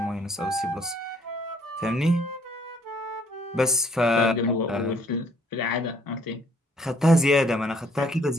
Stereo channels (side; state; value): both; normal; correlation 0.63